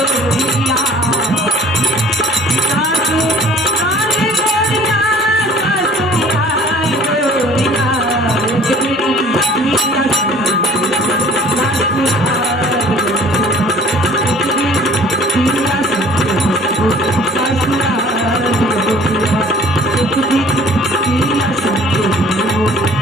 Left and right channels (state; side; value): normal; both; correlation 0.51